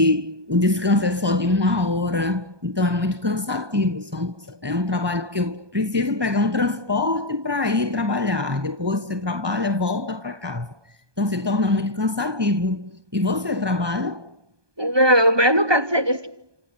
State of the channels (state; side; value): late; left; 1.2 ms